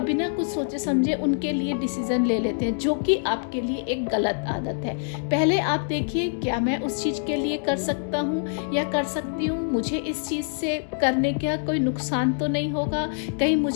बिना कुछ सोचे समझे उनके लिए डिसीजन ले लेते हैं, जो कि आपके लिए एक गलत आदत है। पहले आप देखिए क्या मैं उस चीज़ के लिए कर सकता हूँ या कर सकती हूँ, मुझे इस चीज़ से करने का कोई नुकसान तो नहीं होगा, कहीं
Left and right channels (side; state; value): right; silent; digital silence